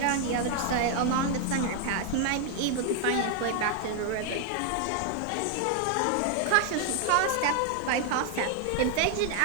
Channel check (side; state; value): both; different; correlation 0.00